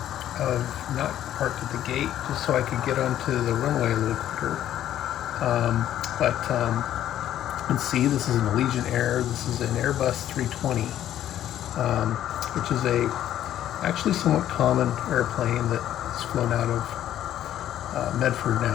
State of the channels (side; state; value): right; quieter; 11.7 dB